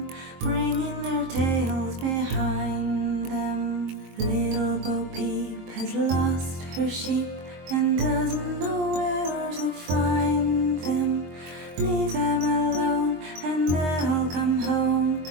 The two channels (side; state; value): left; late; 23 ms